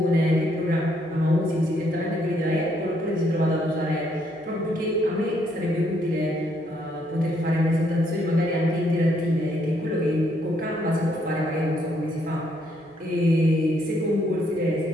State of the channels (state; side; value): noise; right; hum, 30 dB below the sound